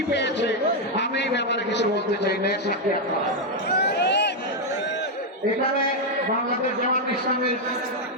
পেয়েছে, আমি এই ব্যাপারে কিছু বলতে চাই না। এখানে বাংলাদেশ জামাত ইসলামীর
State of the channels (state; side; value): normal; both; correlation 0.01